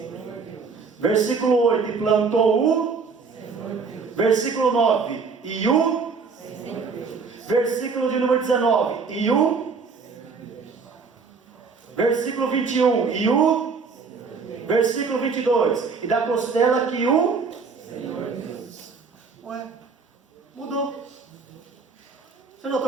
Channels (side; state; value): left; quieter; 5.0 dB